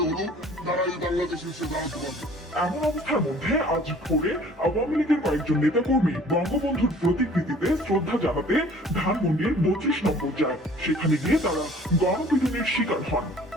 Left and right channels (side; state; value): both; normal; correlation 0.51